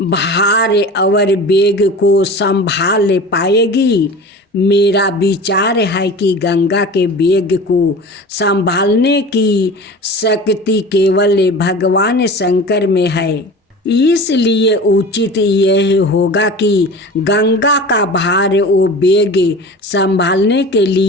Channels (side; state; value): both; normal; correlation 0.36